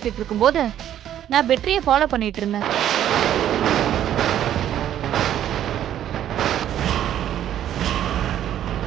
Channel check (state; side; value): quieter; left; 11.1 dB